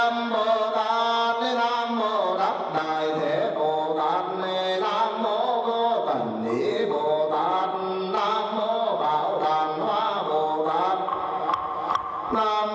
Bồ Tát. Nam mô Đắc Đại Thế Bồ Tát. Nam mô Vô Tận Ý Bồ Tát. Nam mô Bảo Đàn Hoa Bồ Tát.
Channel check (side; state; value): both; identical; correlation 1.00